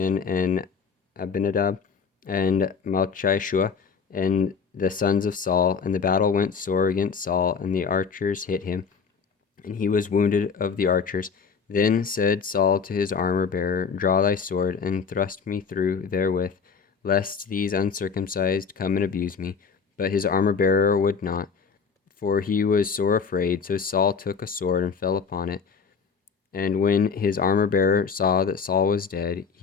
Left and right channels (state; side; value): quieter; right; 5.9 dB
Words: and Abinadab and Malchishua and the sons of Saul. And the battle went sore against Saul, and the archers hit him, and he was wounded of the archers. Then said Saul to his armor-bearer, Draw thy sword, and thrust me through therewith, lest these uncircumcised come and abuse me. But his armor-bearer would not, for he was sore afraid. So Saul took a sword and fell upon it. And when his armor-bearer saw that Saul was dead,